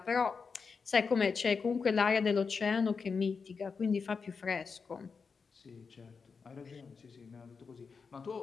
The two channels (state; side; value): quieter; right; 5.3 dB